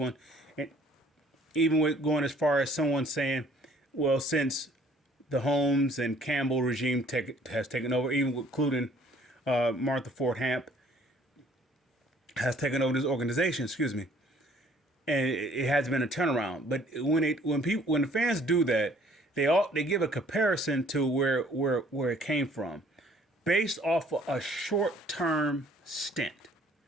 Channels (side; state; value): both; normal; correlation 0.58